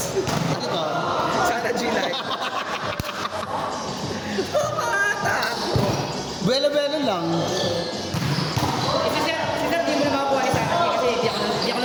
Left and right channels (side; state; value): both; identical; correlation 1.00